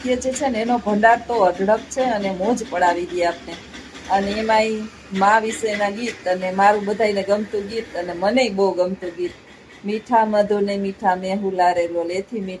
જે છે ને એનો ભંડાર તો અઢળક છે, અને મોજ પડાવી દે આપને. અને એમાંય મા વિશેના ગીત, અને મારું બધાને ગમતું ગીત, અને મને બહુ ગમતું ગીત મીઠા મધુ ને મીઠા મેહુલા રે લોલ, એથી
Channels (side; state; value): both; identical; correlation 1.00